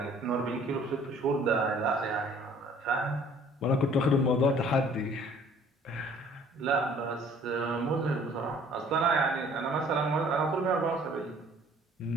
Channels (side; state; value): both; normal; correlation 0.55